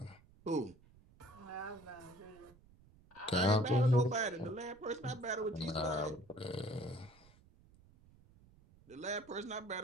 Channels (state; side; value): noise; right; rumble, 26 dB below the sound